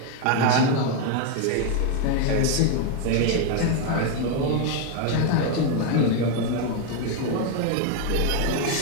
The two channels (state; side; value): different; both; correlation 0.01